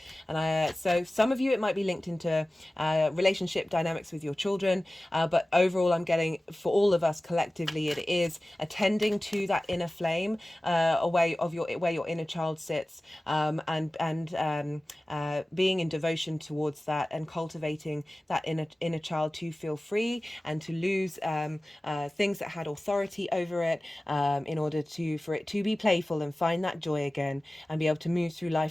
And so some of you, it might be linked into relationship dynamics with your children, but overall I'm getting, for all of us collectively, it is attending to that inner flame, where your inner child sits, and being in devotion towards that, and cultivating that inner child to feel free and to lose things that had authority over it, in order for it to be playful and find that joy again, and be able to move through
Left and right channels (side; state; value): both; normal; correlation 0.97